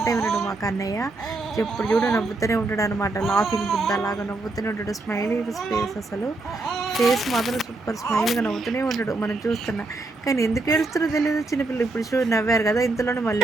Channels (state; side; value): quieter; left; 3.2 dB